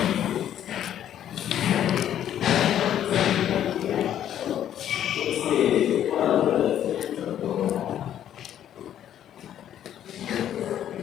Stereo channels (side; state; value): right; quieter; 10.7 dB